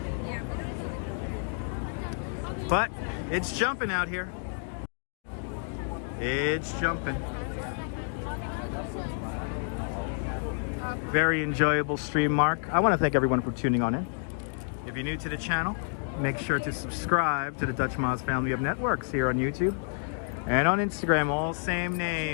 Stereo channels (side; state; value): right; silent; 55 dB below the other